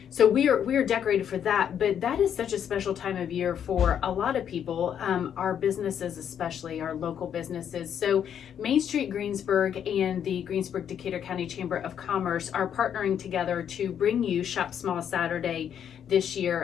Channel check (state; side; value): quieter; right; 8.9 dB